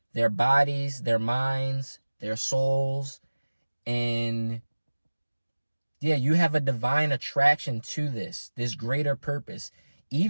their bodies, their minds, their souls. And yeah, you have a divine attraction to this greater purpose.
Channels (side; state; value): both; inverted; correlation -1.00